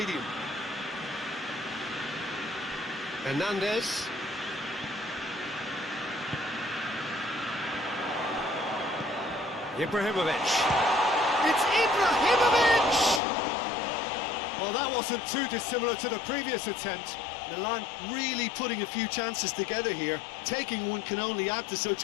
Hernandez. Ibrahimovic. It's Ibrahimovic! Well, that wasn't too dissimilar to the previous attempt. Milan really putting a few chances together here. Taking one can only add to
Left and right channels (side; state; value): right; drops out; at 13.2 s